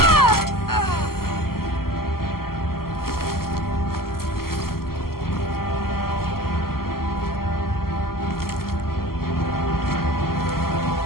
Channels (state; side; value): late; right; 0.93 ms